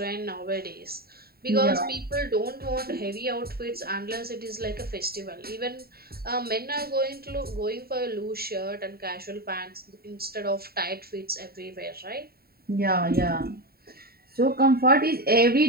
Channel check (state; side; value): late; left; 0.45 ms